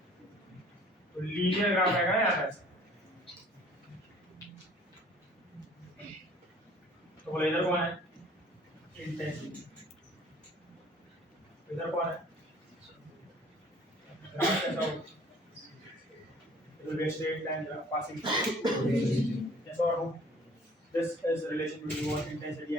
तो लीनियर ग्राफ आएगा ना यहाँ पर। तो बोले इधर कौन है, इंटेंसिटी, इधर कौन है, ग्राफ कैसा होगा, it will be a straight line graph passing through। yes or no, this is relation between what intensity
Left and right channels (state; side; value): normal; both; correlation 0.53